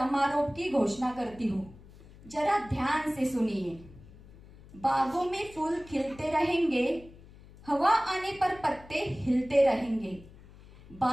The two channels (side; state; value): left; noise; hum, 21 dB below the sound